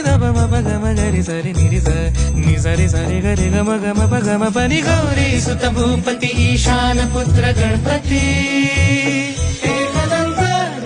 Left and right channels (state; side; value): identical; both; correlation 1.00